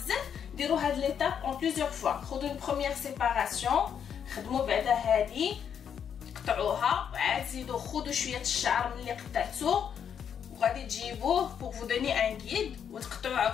ديروا هاد ليتاب اون بليزيور فوا. خذوا اون بروميير سيباراسيون، خدموا بعدا هادي قطعوها، وعاد زيدوا خذوا شويه الشعر من اللي قطعتوه وغادي تجيبوه بور فو دوني ان غيد وتقطعوه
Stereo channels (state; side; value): quieter; right; 8.1 dB